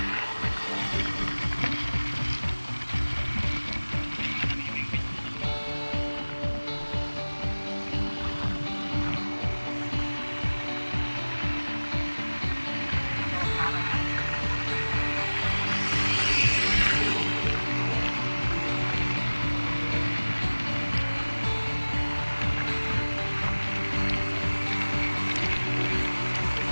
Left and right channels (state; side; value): inverted; both; correlation -1.00